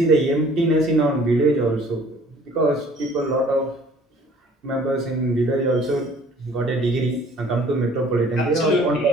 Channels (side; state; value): both; normal; correlation 0.54